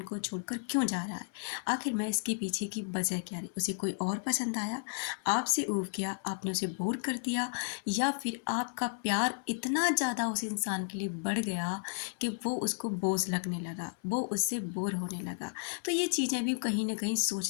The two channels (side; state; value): right; silent; 56 dB below the other